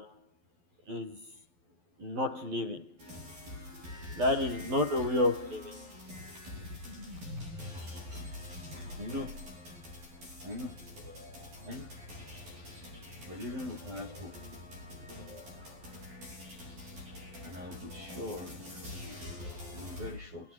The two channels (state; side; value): late; left; 12 ms